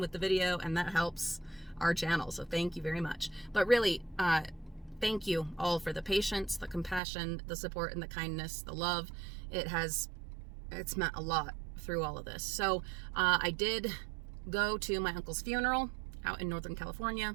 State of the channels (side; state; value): left; drops out; at 7.0 s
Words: the video and that helps our channel. So thank you very much. But really, thank you all for the patience, the compassion, the support, and the kindness, the love. It's meant a lot through all of this. So I did go to my uncle's funeral out in Northern